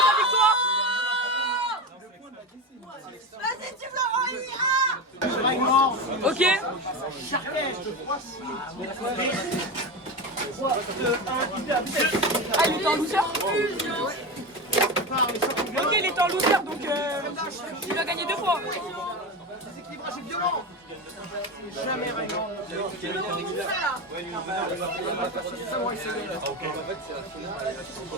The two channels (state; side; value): normal; both; correlation 0.21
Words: victoire. Vas-y, tu me l'envoies. Ok. Ah, il était en loser. Ok, il était en loser, donc il va gagner 2 fois. Déséquilibrage est violent. Jamais rien.